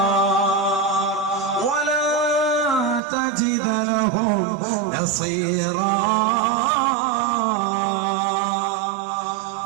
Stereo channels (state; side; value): drops out; left; at 3.0 s